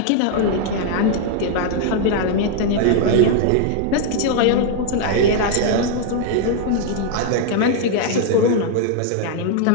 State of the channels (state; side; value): different; both; correlation 0.00